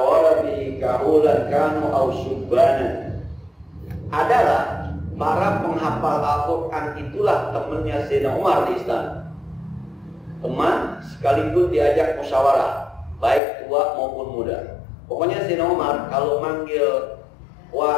bihi kahulan kanu aw syubbanan. Adalah para penghafal Al-Quran itulah temannya Sayyidina Umar di istana. Teman sekaligus diajak musyawarah, baik tua maupun muda. Pokoknya Sayyidina Umar kalau manggil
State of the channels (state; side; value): drops out; right; at 13.4 s